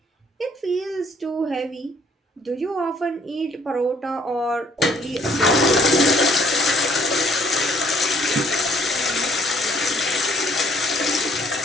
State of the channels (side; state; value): both; normal; correlation 0.62